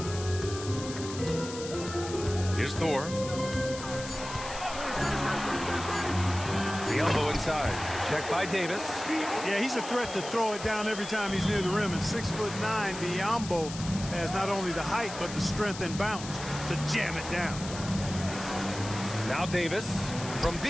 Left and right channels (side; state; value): left; noise; hiss, 11 dB below the sound